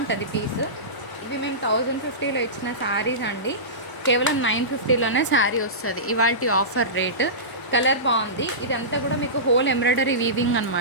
పీస్. ఇవి మేము 1050లో ఇచ్చిన శారీస్ అండి, కేవలం 950లోనే శారీ వస్తుంది. ఇవాళ ఆఫర్ రేట్. కలర్ బాగుంది. ఇదంతా కూడా మీకు హోల్ ఎంబ్రాయిడరీ వీవింగ్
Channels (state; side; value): late; right; 1.0 ms